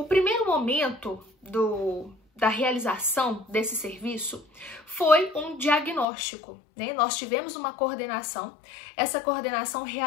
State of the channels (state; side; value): drops out; right; at 6.1 s